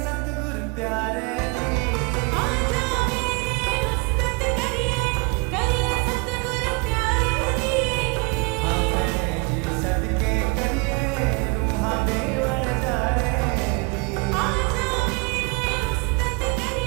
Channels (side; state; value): left; quieter; 29.1 dB